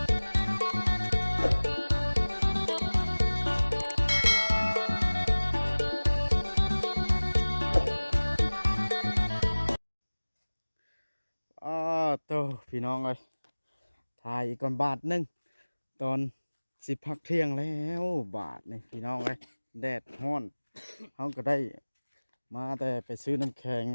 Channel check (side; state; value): both; inverted; correlation -1.00